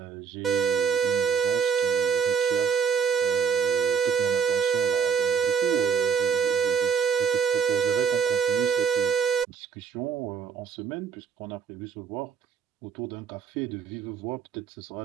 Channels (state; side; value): quieter; left; 6.7 dB